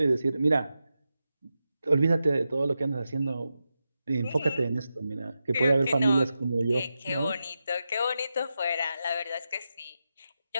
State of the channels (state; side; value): inverted; both; correlation -0.90